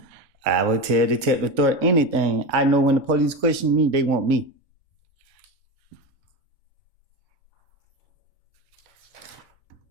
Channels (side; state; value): left; late; 2.2 ms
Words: I would tell Detective Thorpe anything. I know when the police question me, they want me.